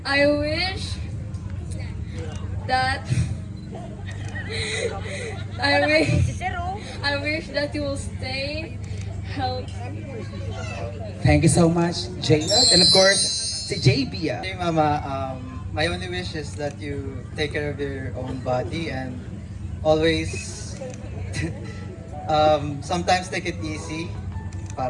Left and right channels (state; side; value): identical; both; correlation 1.00